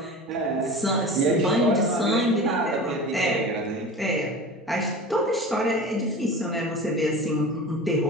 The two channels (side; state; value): both; normal; correlation 0.34